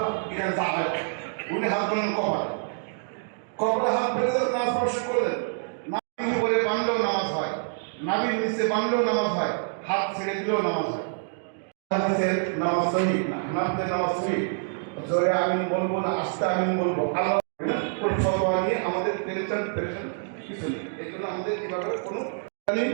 উনি হাত বলেন কপালে হাত ফেলে নামাজ স্পর্শ করলেন। নাভির উপরে বাঁধলেও নামাজ হয়, নাভির নিচে বাঁধলেও নামাজ হয়, হাত ছেড়ে দিলেও নামাজ হয়। নামাজ সহি না, হানাফিদের নামাজ সহি। জোরে আমিন বলবো না আস্তে আমিন বলবো, আল্লাহ ফতোয়া নিয়ে আমাদের টেনশন কিছু নেই। এই জন্য আমাদের কিভাবে কোনো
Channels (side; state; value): left; silent; digital silence